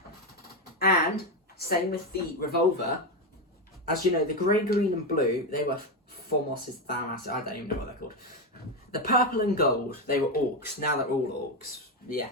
And same with the Revolver. As you know, the grey, green, and blue, they were Formos's Thamas. I don't even know what they're called. The purple and gold, they were orcs. Now they're all orcs. Yeah,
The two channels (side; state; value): both; normal; correlation 0.11